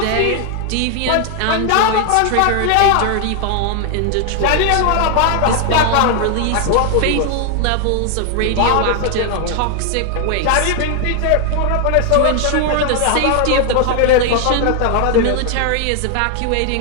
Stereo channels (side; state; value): both; different; correlation 0.00